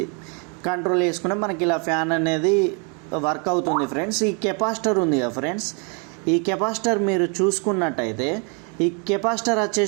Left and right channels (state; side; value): quieter; left; 36.7 dB